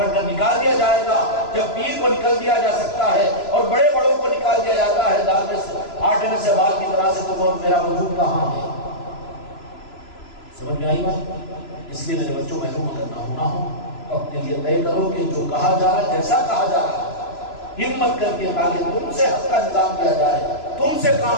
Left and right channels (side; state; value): right; late; 3.0 ms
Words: کر نکال دیا جائے گا۔ جب پیر کو نکل دیا جا سکتا ہے اور بڑے بڑوں کو نکال دیا جاتا ہے دال میں سے آٹے میں سے بال کی طرح سے، تو میرا وجود کہاں ہے؟ سمجھ میں آئی بات؟ اس لیے میرے بچوں محروم اگر نہ ہونا ہو تو اپنے لیے طے کرو کہ جو کہا جا رہا ہے، جیسا کہا جا رہا ہے، ہمت کر کے تاکہ تم سے حق کا نظام کیا جائے، تم سے